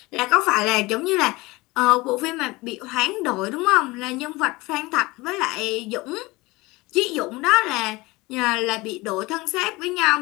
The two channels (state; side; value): quieter; right; 22.2 dB